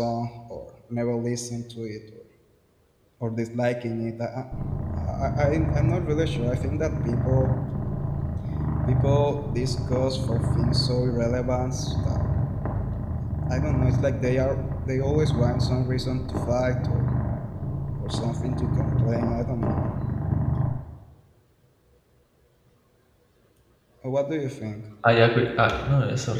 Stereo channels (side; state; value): both; identical; correlation 1.00